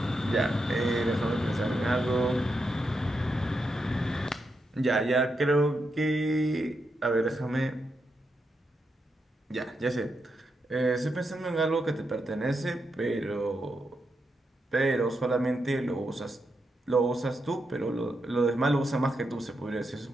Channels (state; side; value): normal; both; correlation 0.84